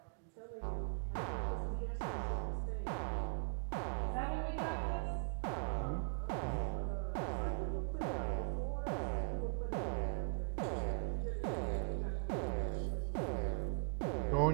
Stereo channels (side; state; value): left; silent; 51 dB below the other